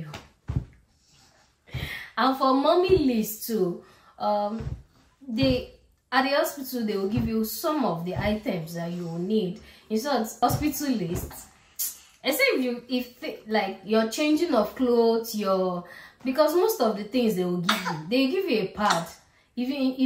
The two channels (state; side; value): identical; both; correlation 1.00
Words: And for mommy list too, they at the hospital they will give you some of the items that you will need. It's not hospital list. Except if like you're changing of clothes, because most of the things they will give you a pad. If